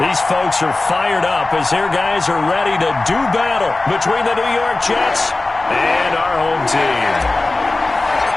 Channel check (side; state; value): right; quieter; 3.1 dB